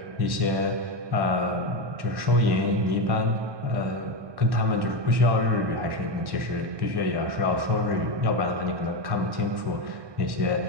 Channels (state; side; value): late; left; 1.1 ms